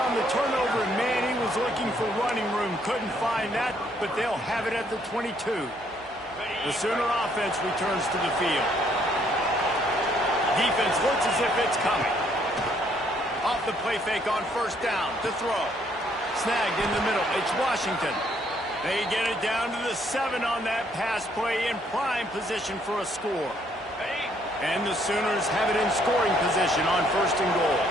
the turnover, and man, he was looking for running room. Couldn't find that, but they'll have it at the 22. The Sooner offense returns to the field. Defense looks as if it's coming. Off the play fake on first down to throw. Snagged in the middle. It's Washington. They get it down to the 7 on that pass play in prime position for a score. And the Sooners have it in scoring position on 1st and goal.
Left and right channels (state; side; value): normal; both; correlation 0.68